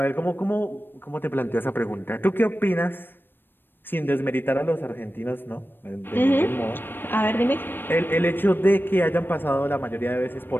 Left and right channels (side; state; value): right; late; 0.096 ms